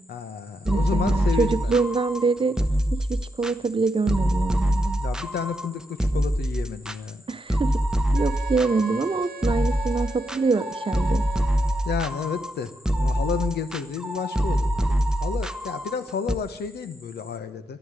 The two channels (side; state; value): both; normal; correlation 0.81